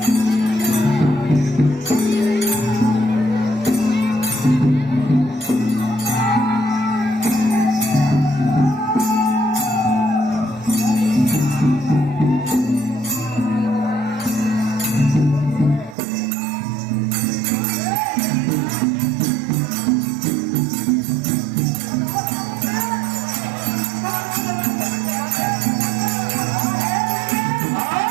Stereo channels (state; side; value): drops out; left; at 16.0 s